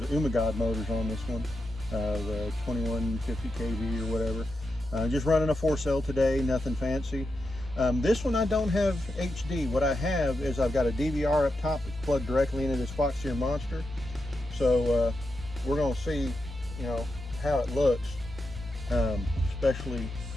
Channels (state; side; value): normal; both; correlation 0.87